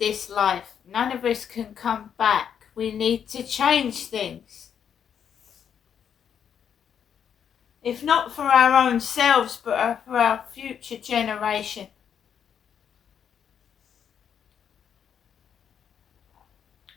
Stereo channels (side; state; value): right; quieter; 8.2 dB